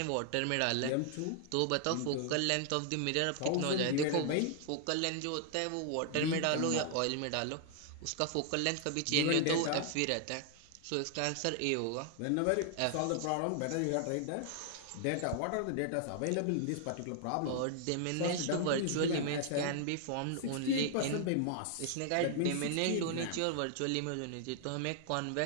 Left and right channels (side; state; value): both; different; correlation 0.00